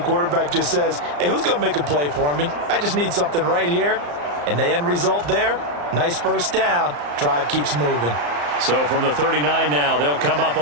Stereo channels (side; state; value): left; late; 34 ms